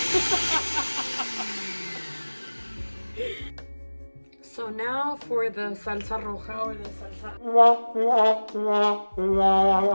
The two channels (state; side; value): inverted; both; correlation -1.00